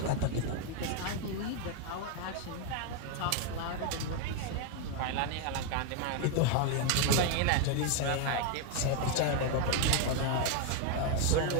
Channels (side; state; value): both; different; correlation 0.01